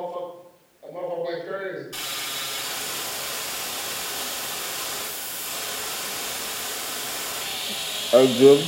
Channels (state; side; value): identical; both; correlation 1.00